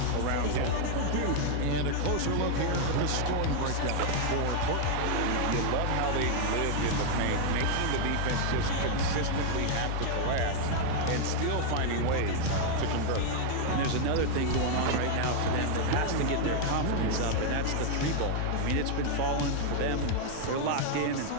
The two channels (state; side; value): different; both; correlation 0.00